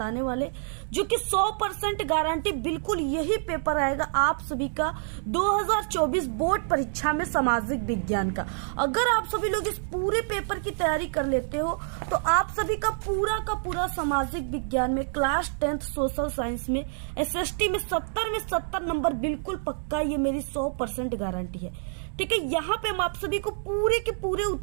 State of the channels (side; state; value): left; silent; digital silence